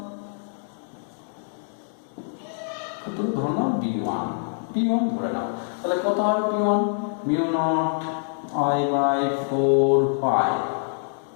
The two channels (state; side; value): silent; right; digital silence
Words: ক্ষেত্র ধরে নাও B1, B1 ধরে নাও, তাহলে কত হবে B1 μ0I/4π,